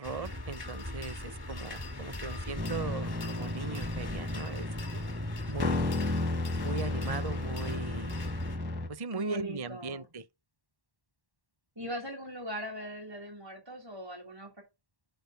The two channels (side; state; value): left; late; 1.1 ms